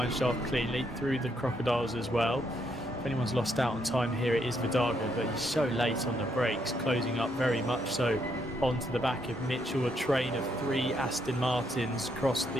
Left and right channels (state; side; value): normal; both; correlation 0.75